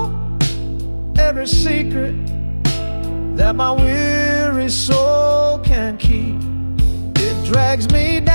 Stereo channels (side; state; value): both; inverted; correlation -1.00